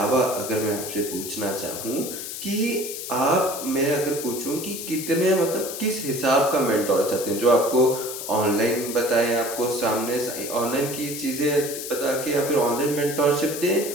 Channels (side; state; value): left; noise; hiss, 7 dB below the sound